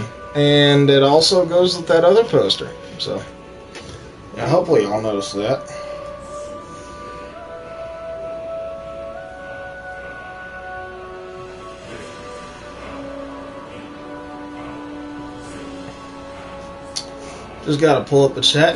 and it also goes with that other poster. So, yeah, hopefully y'all notice that. Just gotta pull up the chat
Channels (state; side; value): identical; both; correlation 1.00